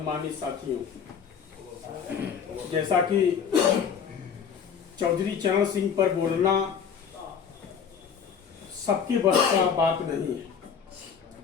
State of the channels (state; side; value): quieter; right; 7.1 dB